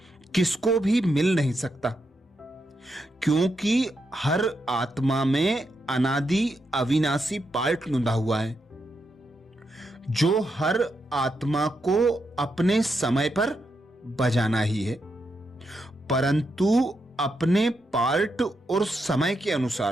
किसको भी मिल नहीं सकता, क्योंकि हर आत्मा में अनादि अविनाशी पार्ट लुंधा हुआ है, जो हर आत्मा को अपने समय पर बजाना ही है, परंतु अपने पार्ट और समय के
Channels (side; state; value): both; normal; correlation 0.83